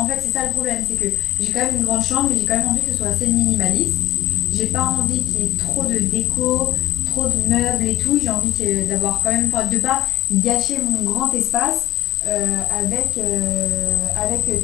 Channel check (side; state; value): right; quieter; 14.7 dB